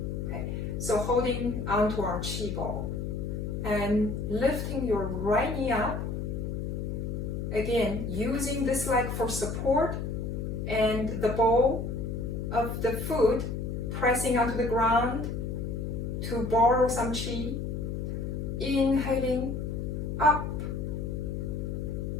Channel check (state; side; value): noise; left; hum, 3 dB below the sound